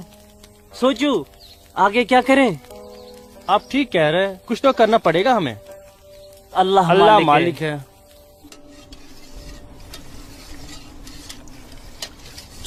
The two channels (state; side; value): identical; both; correlation 1.00